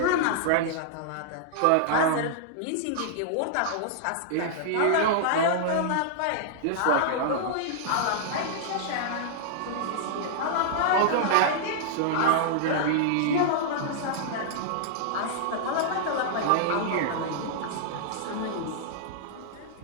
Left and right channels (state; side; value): different; both; correlation -0.01